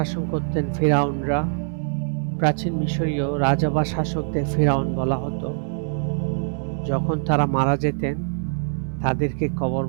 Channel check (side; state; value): left; silent; 63 dB below the other